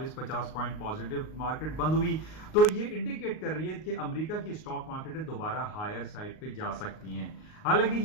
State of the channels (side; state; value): right; late; 38 ms